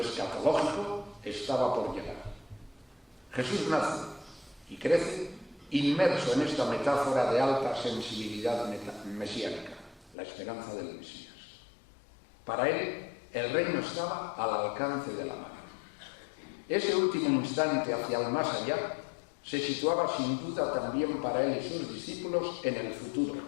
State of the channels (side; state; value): right; drops out; at 10.2 s